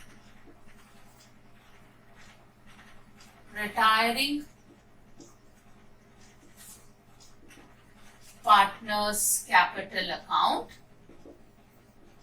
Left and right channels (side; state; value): both; identical; correlation 1.00